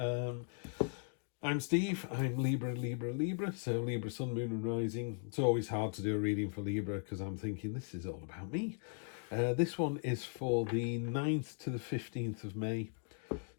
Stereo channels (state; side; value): silent; right; 52 dB below the other